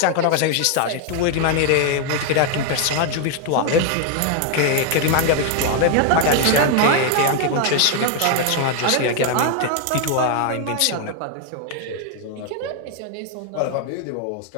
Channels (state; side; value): different; both; correlation 0.00